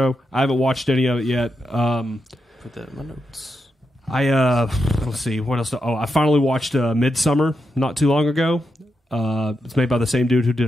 I haven't watched any of it yet. Put that in my notes. Let's see what else. I finally watched Midsummer not too long ago. It's made by the same dude who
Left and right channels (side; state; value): both; normal; correlation 0.86